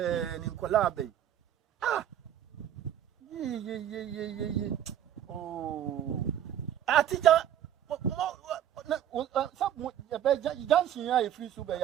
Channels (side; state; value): left; quieter; 10.5 dB